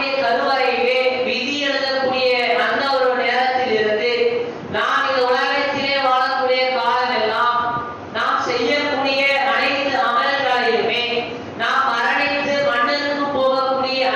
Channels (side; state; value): both; identical; correlation 1.00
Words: கருவறையிலே விதி எழுதக்கூடிய அந்த ஒரு நேரத்தில் இருந்து நாம் இந்த உலகத்திலே வாழக்கூடிய காலமெல்லாம் நாம் செய்யக்கூடிய அனைத்து அமல்களையுமே நாம் மரணித்து மண்ணுக்கு போகக்கூடிய